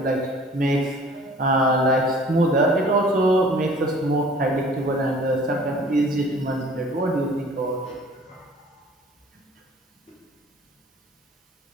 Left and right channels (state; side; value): normal; both; correlation 0.50